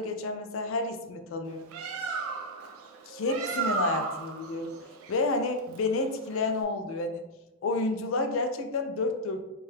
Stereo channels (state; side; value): normal; both; correlation -0.06